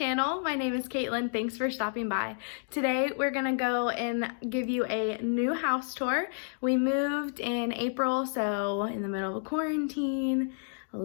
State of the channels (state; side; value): silent; right; digital silence